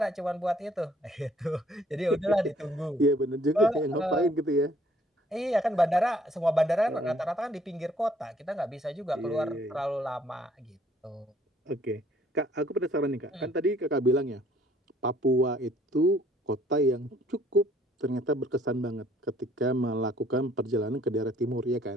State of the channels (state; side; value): normal; both; correlation 0.61